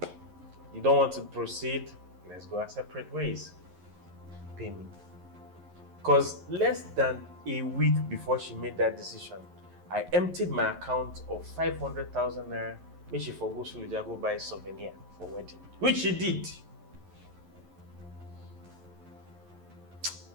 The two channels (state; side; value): late; left; 11 ms